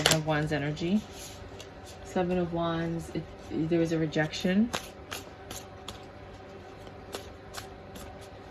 of Wands energy. 7 of Wands, there was a rejection.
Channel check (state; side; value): identical; both; correlation 1.00